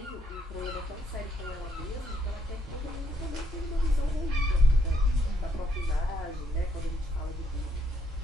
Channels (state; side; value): normal; both; correlation 0.73